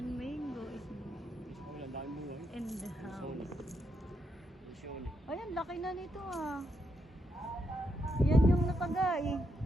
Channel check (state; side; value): normal; both; correlation 0.80